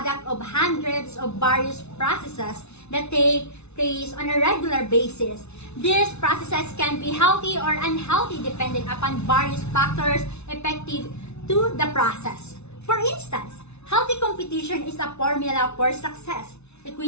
of hundreds of various processes that take place on a regular basis. These processes can be healthy or unhealthy depending upon various factors effective to the process. For instance, healthy competition is a formula for success.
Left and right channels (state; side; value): late; right; 0.81 ms